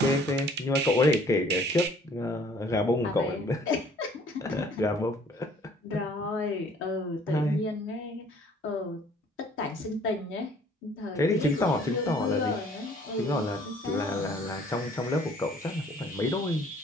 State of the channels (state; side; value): normal; both; correlation 0.57